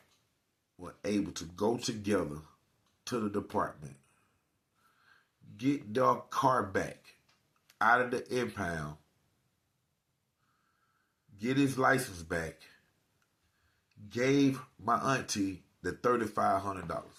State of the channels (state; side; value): identical; both; correlation 1.00